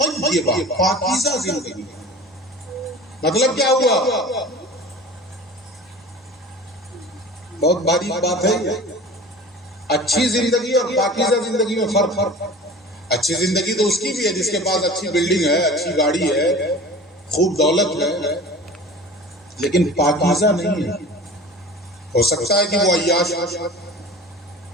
پاکیزہ زندگی. مطلب کیا ہوا؟ بہت باریک بات ہے. اچھی زندگی اور پاکیزہ زندگی میں فرق. اچھی زندگی تو اس کی بھی ہے جس کے پاس اچھی بلڈنگ ہے، اچھی گاڑی ہے، خوب دولت ہے، لیکن پاکیزہ نہیں ہے. ہو سکتا ہے کہ وہ عیاش،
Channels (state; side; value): normal; both; correlation 0.39